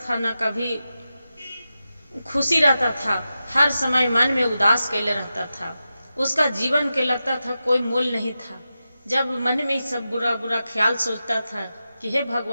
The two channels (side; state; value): both; inverted; correlation -0.91